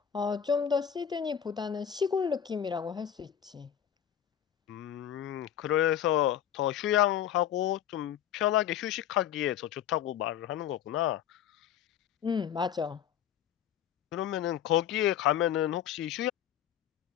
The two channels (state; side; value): quieter; right; 9.9 dB